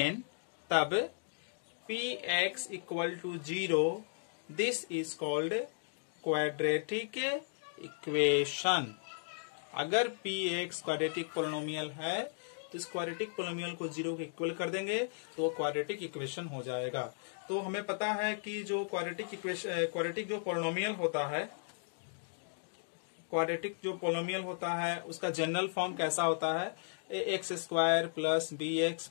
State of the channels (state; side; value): silent; right; digital silence